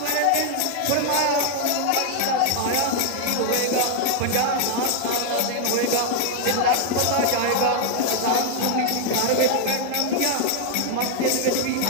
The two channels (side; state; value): both; different; correlation 0.00